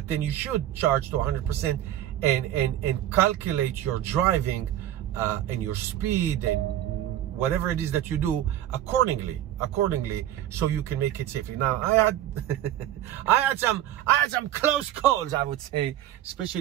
then you should charge to 100% and calculate your driving and your speed and whatever it is that you do accordingly, so you can make it safely. Now, I had some close calls, I would say,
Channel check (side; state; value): left; quieter; 12.4 dB